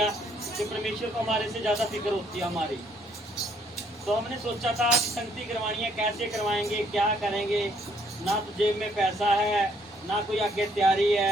कि परमेश्वर को हमारे से ज़्यादा फिक्र होती है हमारी। तो हमने सोचा था कि संगति करवानी है, कैसे करवाएंगे, क्या करेंगे। ना तो जेब में पैसा है, ना कोई आगे तैयारी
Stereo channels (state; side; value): normal; both; correlation 0.67